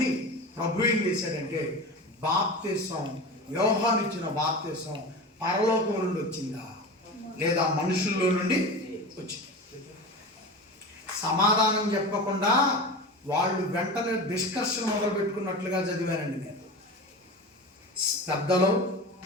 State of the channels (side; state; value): both; normal; correlation 0.29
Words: ప్రభు ఏం చేశాడంటే, బాప్తిసం, యోహాను ఇచ్చిన బాప్తిసం పరలోకం నుండి వచ్చిందా లేదా మనుషుల్లో నుండి వచ్చింది? సమాధానం చెప్పకుండా వాళ్ళు వెంటనే డిస్కషన్ మొదలు పెట్టుకున్నట్లుగా చదివానండి నేను. పెద్దలు,